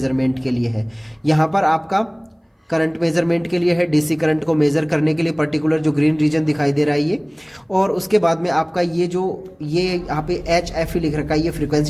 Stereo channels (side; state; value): both; identical; correlation 1.00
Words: के लिए है। यहाँ पर आपका करंट मेजरमेंट के लिए है, डीसी करंट को मेज़र करने के लिए पर्टिकुलर जो ग्रीन रीजन दिखाई दे रहा है ये। और उसके बाद में आपका ये यहाँ पे HF लिख रखा है, ये